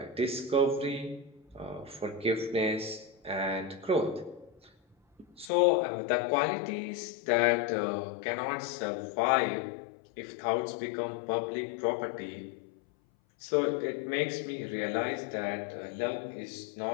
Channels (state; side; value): drops out; right; at 5.5 s